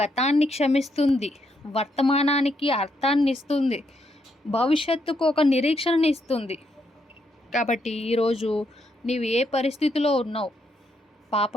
క్షమిస్తుంది, వర్తమానానికి అర్థాన్ని ఇస్తుంది, భవిష్యత్తుకు ఒక నిరీక్షణని ఇస్తుంది. కాబట్టి ఈరోజు నీవు ఏ పరిస్థితిలో ఉన్నావు?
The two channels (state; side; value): normal; both; correlation 0.77